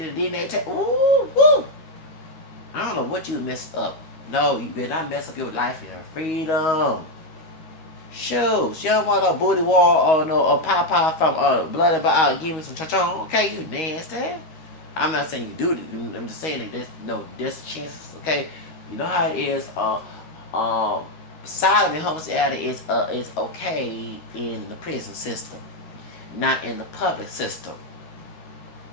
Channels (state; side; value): late; right; 13 ms